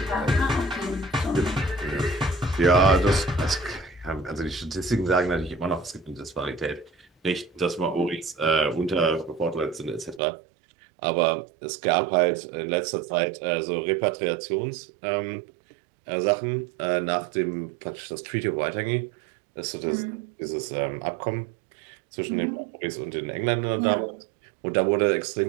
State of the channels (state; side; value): drops out; left; at 10.2 s